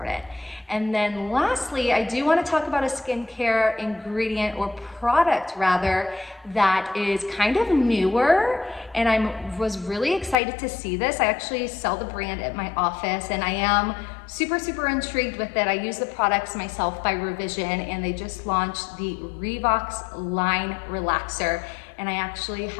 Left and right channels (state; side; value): drops out; right; at 10.4 s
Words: And then lastly, I do want to talk about a skincare ingredient, or product rather, that is kind of newer. And I was really excited to see this. I actually sell the brand at my office, and I am super, super intrigued with it. I use the products myself by Revision, and they just launched the Revox Line Relaxer. And I actually